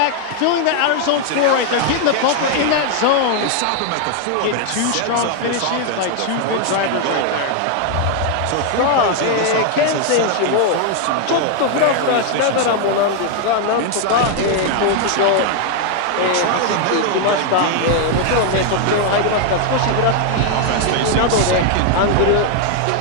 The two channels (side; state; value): both; different; correlation 0.00